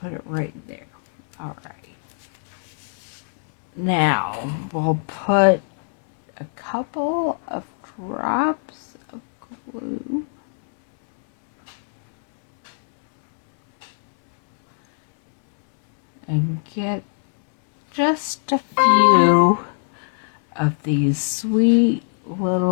put it right there. All right. Now we'll put a couple of drops of glue and get just a few of these sweet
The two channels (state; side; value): silent; right; 65 dB below the other